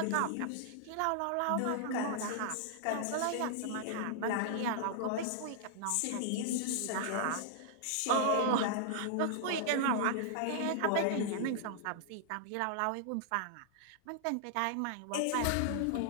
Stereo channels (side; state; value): both; different; correlation -0.01